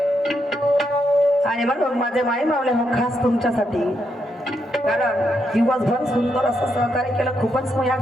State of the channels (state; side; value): normal; both; correlation 0.80